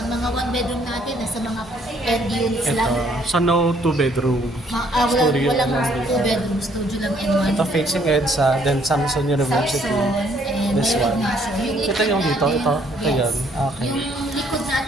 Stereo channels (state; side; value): normal; both; correlation 0.65